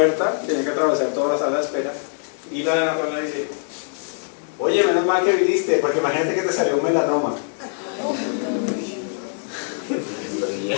tenía que atravesar toda la sala de espera, y la dermatóloga dice: oye, menos mal que viniste, porque imagínate que te salió un melanoma.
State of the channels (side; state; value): right; silent; 64 dB below the other